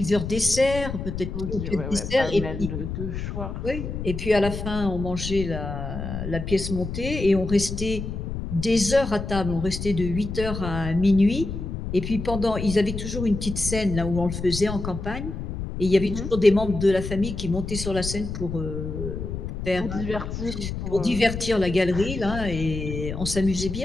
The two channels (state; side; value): noise; left; rumble, 6 dB below the sound